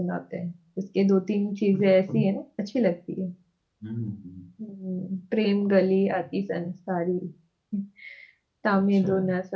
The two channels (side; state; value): both; identical; correlation 1.00